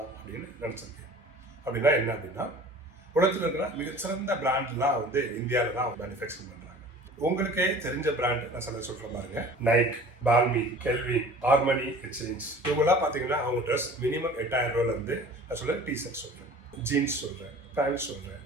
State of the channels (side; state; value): both; normal; correlation 0.44